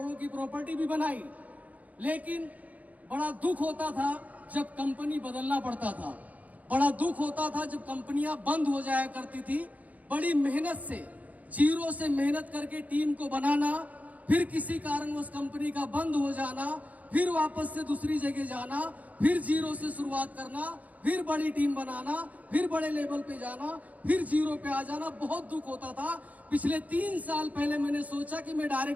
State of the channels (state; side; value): late; left; 0.074 ms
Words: की प्रॉपर्टी भी बनाई। लेकिन बड़ा दुख होता था जब कंपनी बदलना पड़ता था, बड़ा दुख होता था जब कंपनियां बंद हो जाया करती थी। बड़ी मेहनत से, जीरो से मेहनत करके टीम को बनाना, फिर किसी कारण उस कंपनी का बंद हो जाना, फिर वापस से दूसरी जगह जाना, फिर जीरो से शुरुआत करना, फिर बड़ी टीम बनाना, फिर बड़े लेवल पे जाना, फिर जीरो पे आ जाना, बहुत दुख होता था। पिछले 3 साल पहले मैंने सोचा कि मैं